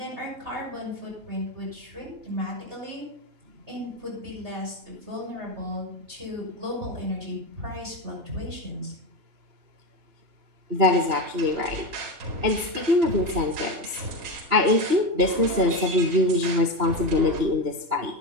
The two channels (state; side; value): late; left; 3.0 ms